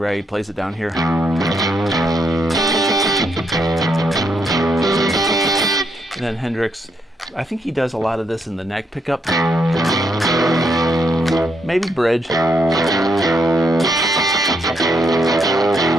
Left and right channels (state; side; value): normal; both; correlation 0.77